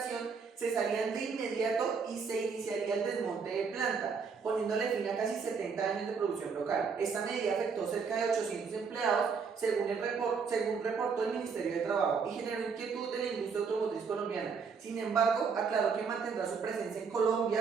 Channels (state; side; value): quieter; left; 5.6 dB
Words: cesarían de inmediato y se iniciaría el desmonte de planta, poniéndole fin a casi 70 años de producción local. Esta medida afectó cerca de 800 empleados, según reportó el Ministerio de Trabajo, y generó inquietud de la industria automotriz colombiana. Sin embargo, aclaró que mantendrá su presencia en